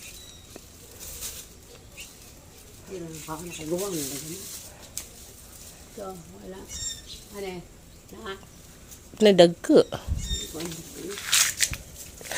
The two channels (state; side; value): identical; both; correlation 1.00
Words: Pero pa na kagawang na gani. So, wala. Ano? Na Nadagko.